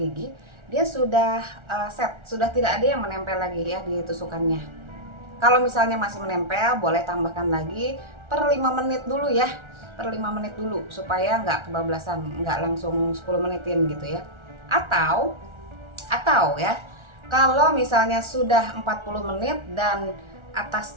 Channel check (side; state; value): left; late; 1.4 ms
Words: dia sudah set, sudah tidak ada yang menempel lagi ya di tusukannya. Kalau misalnya masih menempel, boleh tambahkan lagi per 5 menit dulu ya, per 5 menit dulu supaya nggak kebablasan, nggak langsung 10 menitin gitu ya. Atau ya, kalau misalnya sudah 40 menit dan